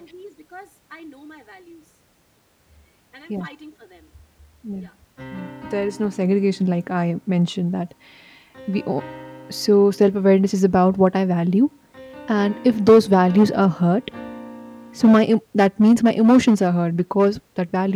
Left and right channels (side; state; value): both; identical; correlation 1.00